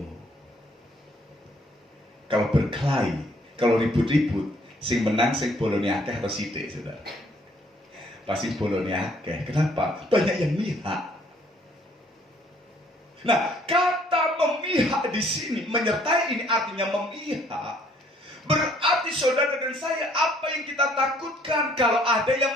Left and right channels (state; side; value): normal; both; correlation 0.62